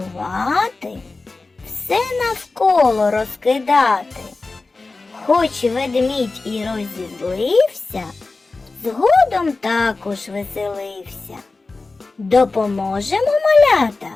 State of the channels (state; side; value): quieter; right; 3.6 dB